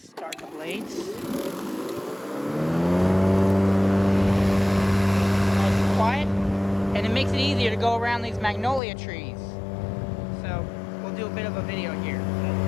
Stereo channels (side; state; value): right; drops out; at 8.8 s